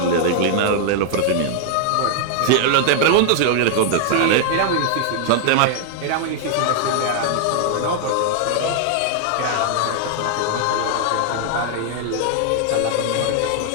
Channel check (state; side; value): different; both; correlation -0.01